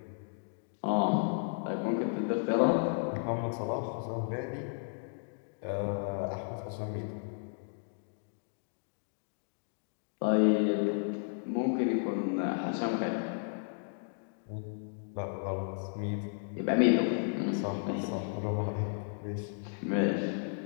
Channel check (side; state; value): right; silent; digital silence